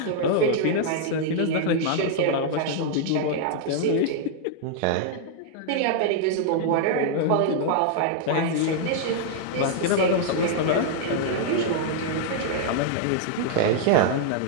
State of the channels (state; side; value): different; both; correlation -0.01